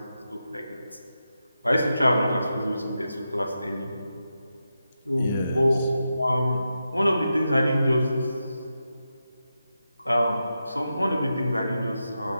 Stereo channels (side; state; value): both; inverted; correlation -0.89